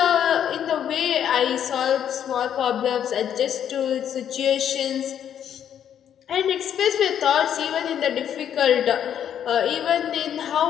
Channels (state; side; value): quieter; right; 9.4 dB